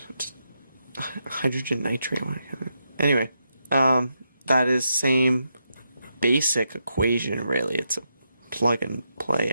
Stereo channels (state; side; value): inverted; both; correlation -0.83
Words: hydrogen nitrate. Anyway, that is same basic equation. Really, it's a plug and play,